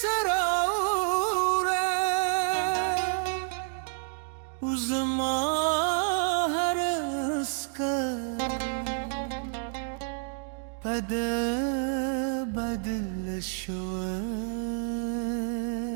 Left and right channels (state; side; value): silent; left; digital silence